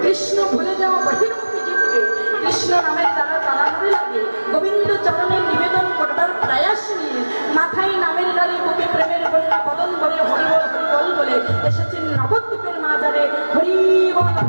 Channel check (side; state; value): both; inverted; correlation -1.00